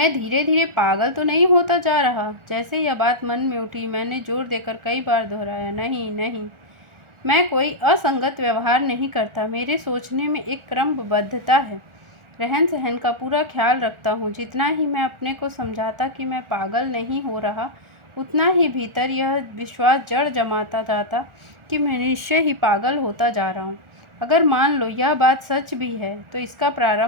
धीरे धीरे पागल तो नहीं होता जा रहा? जैसे यह बात मन में उठी, मैंने जोर देकर कई बार दोहराया, नहीं नहीं, मैं कोई असंगत व्यवहार नहीं करता। मेरे सोचने में एक क्रमबद्धता है। रहन सहन का पूरा ख्याल रखता हूँ। जितना ही मैं अपने को समझाता कि मैं पागल नहीं हो रहा, उतना ही भीतर यह विश्वास जड़ जमाता जाता कि मैं निश्चय ही पागल होता जा रहा हूँ। अगर मान लो यह बात सच भी है, तो इसका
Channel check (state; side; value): late; left; 1.4 ms